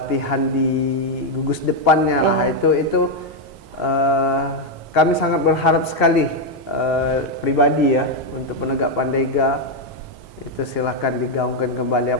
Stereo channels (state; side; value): normal; both; correlation 0.02